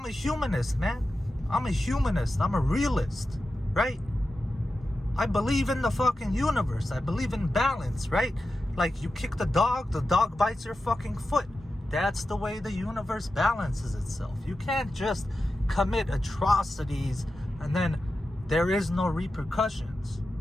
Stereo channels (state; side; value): normal; both; correlation 0.91